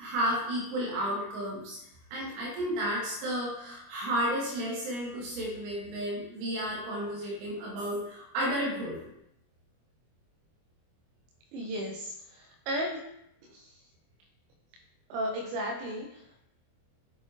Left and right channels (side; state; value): left; late; 25 ms